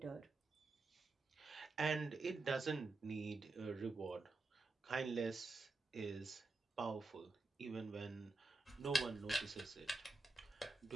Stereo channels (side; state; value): left; quieter; 3.3 dB